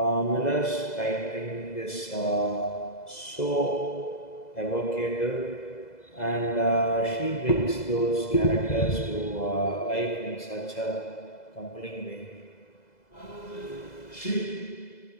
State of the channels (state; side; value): late; right; 2.0 ms